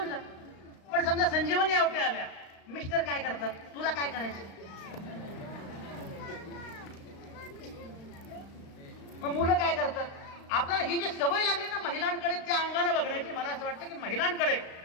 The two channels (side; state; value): right; late; 35 ms